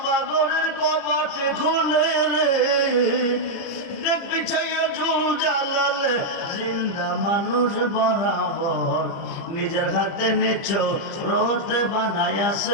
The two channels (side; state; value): right; late; 30 ms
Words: ঘরের কপাটে খুলে রে, দেখবি চাইয়া জুল জালালে জিন্দা মানুষ বরাবর। নিজের হাতে নিচ্ছ রোতে